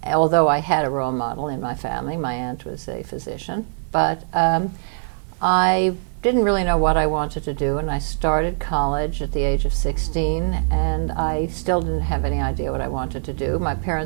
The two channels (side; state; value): left; silent; digital silence